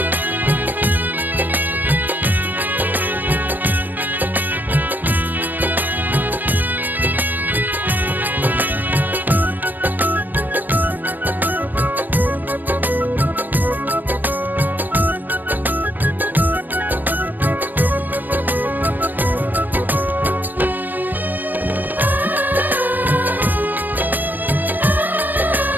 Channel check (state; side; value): late; left; 0.089 ms